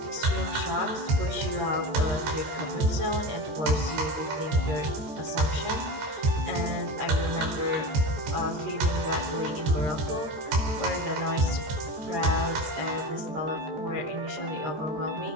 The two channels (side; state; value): left; late; 13 ms